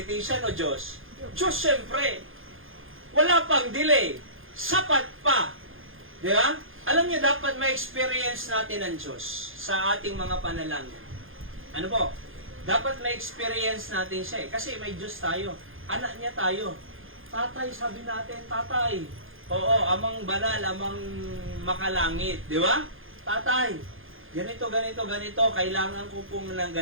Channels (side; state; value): left; late; 0.59 ms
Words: o Diyos? Diyos, syempre. Wala pang delay. Sapat pa. Di ba? Alam niyo, dapat ma-experience natin ang Diyos sa ating mga panalangin. Ano po? Dapat ma-experience natin siya eh. Kasi may Diyos tayo. Anak niya tayo. Tatay, sabi natin, tatay. Oo, amang banal, amang makalangit. Di ba? Tatay, ganito, ganito, ganito. Kailangan ko pong ng